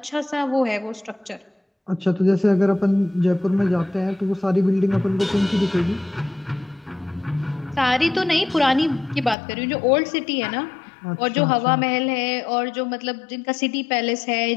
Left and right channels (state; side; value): drops out; right; at 9.3 s